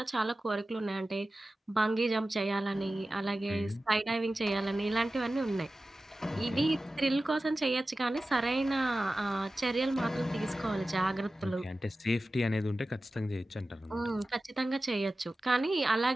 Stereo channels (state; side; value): normal; both; correlation 0.95